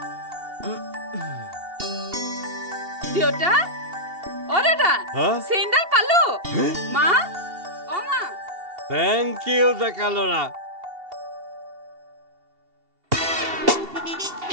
দেউতা দাদা চেইনডাল পালো মা মা থেংক ইউ ডেকা ল'ৰা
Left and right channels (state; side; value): late; left; 2.7 ms